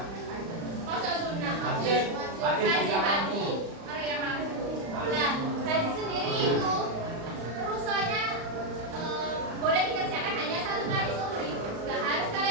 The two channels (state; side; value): late; left; 35 ms